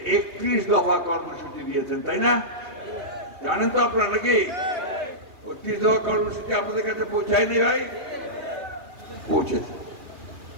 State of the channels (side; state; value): left; late; 2.6 ms